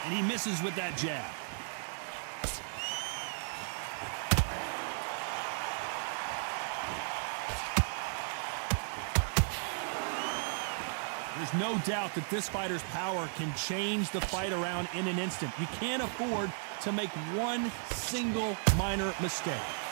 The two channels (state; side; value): silent; left; digital silence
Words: And he misses with that jab. There's no doubt that this fighter's power can change the fight around in an instant. You can't afford to make one single minor mistake.